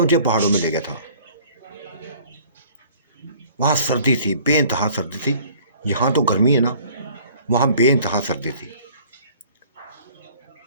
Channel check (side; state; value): both; inverted; correlation -0.53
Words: पहाड़ों में ले गया था। वहाँ सर्दी थी, बेइंतहा सर्दी थी। यहाँ तो गर्मी है ना, वहाँ बेइंतहा सर्दी थी।